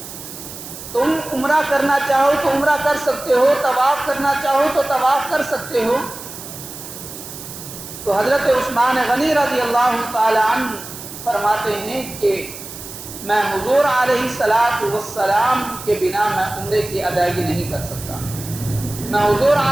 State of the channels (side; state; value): right; noise; hiss, 12 dB below the sound